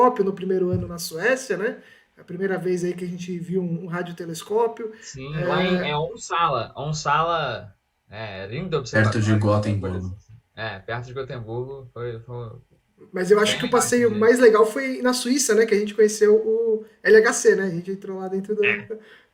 no primeiro ano na Suécia, né? A primeira vez aí que a gente viu um radiotelescópio. Sim, lá em Onsala, lindo observatório. Perto de Gotemburgo. Perto de Gotemburgo. Foi Mas eu acho que o passeio mais legal foi na Suíça, né? Que a gente conheceu o LHC, né? A gente entrou lá dentro do...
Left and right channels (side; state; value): both; identical; correlation 1.00